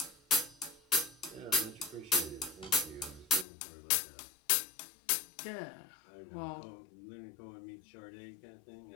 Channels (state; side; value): drops out; right; at 3.5 s